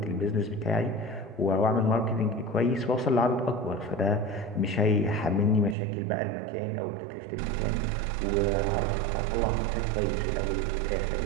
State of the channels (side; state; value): left; drops out; at 5.8 s